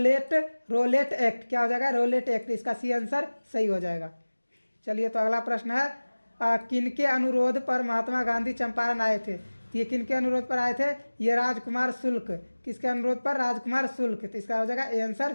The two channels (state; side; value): inverted; both; correlation -1.00